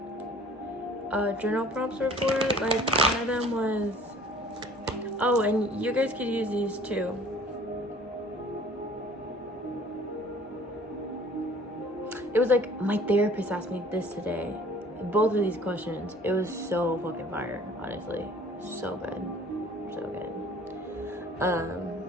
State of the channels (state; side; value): normal; both; correlation 0.51